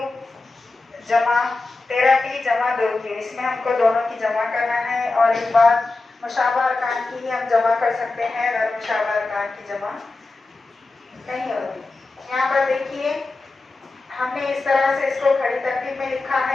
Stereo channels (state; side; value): quieter; right; 3.4 dB